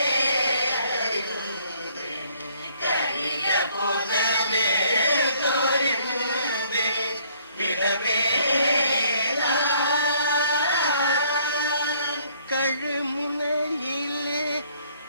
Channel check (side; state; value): both; inverted; correlation -0.63